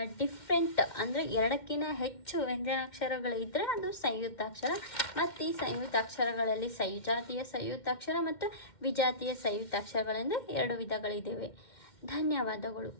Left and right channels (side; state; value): right; late; 2.1 ms